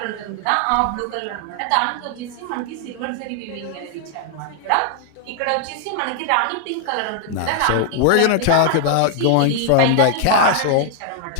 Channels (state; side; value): different; both; correlation 0.00